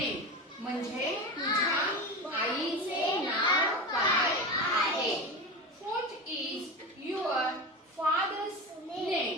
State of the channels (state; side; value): normal; both; correlation 0.25